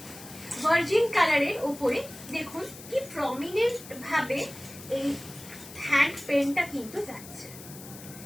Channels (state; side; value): noise; left; hiss, 16 dB below the sound